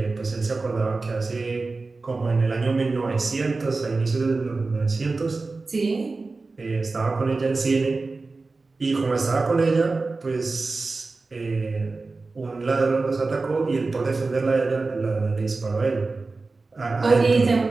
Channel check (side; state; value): left; quieter; 3.7 dB